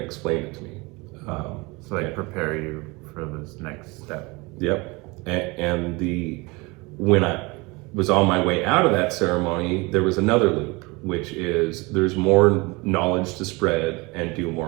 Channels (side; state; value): left; quieter; 25.4 dB